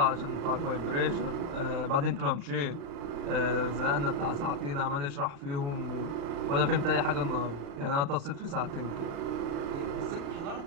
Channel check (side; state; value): left; late; 35 ms